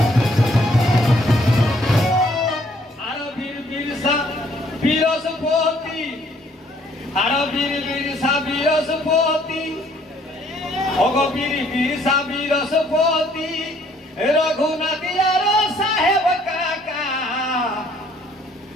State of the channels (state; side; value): normal; both; correlation 0.63